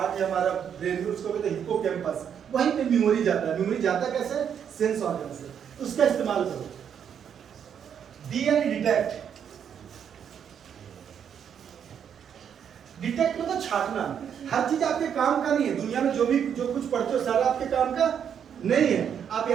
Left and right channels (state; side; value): quieter; left; 8.2 dB